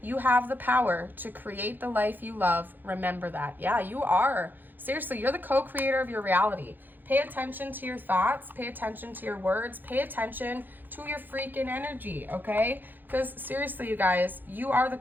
you have the power to create the life you love. Remember that. Yeah, you are. Seriously, you're the co-creator of your reality. Pay attention to your thoughts. Pay attention to your words. Pay attention to your freaking energy, okay? Because seriously, you guys, you are the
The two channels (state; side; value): late; left; 0.089 ms